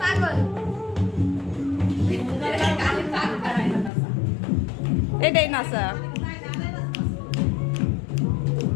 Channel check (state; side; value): drops out; right; at 3.9 s